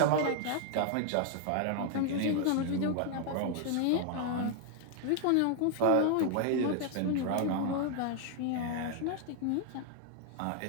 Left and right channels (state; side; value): different; both; correlation 0.00